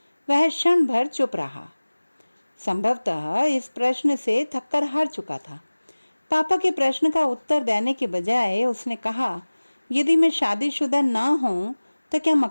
वह क्षण भर चुप रहा। संभवतः इस प्रश्न से थक्कर हार चुका था। पापा के प्रश्न का उत्तर देने के बजाय उसने कहा, यदि मैं शादीशुदा ना हूं तो क्या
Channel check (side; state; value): both; inverted; correlation -1.00